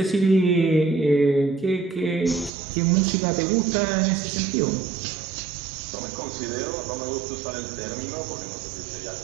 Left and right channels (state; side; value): drops out; left; at 2.5 s